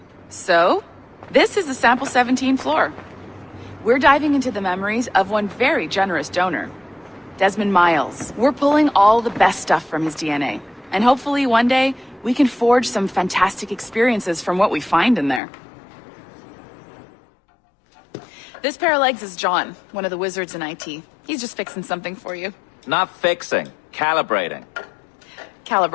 So, this is the Sample 17 floor. We're diving into the memories of one very generous donor, Desmond Miles. We're pulling all the best stuff from his DNA. And hopefully one day, we can forge some fantastic experiences from what we find in there. This pair of legs is John, one of the wizards in IT. He's just fixing something for you. Not fixing, calibrating.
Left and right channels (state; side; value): drops out; right; at 15.4 s